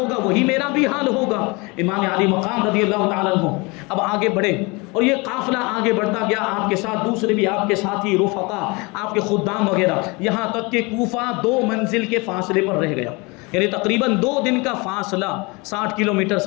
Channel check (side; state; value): right; quieter; 26.9 dB